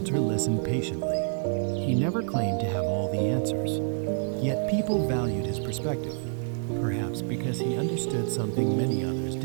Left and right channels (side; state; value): left; silent; 60 dB below the other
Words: listened patiently. He never claimed to have all the answers. Yet people valued his perspective, perhaps because he understood something many others